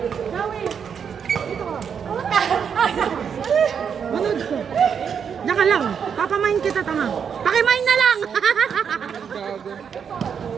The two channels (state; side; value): quieter; left; 7.2 dB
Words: Manood ko. Diyan ka lang. Papamain kita, tama. Pakimain na lang.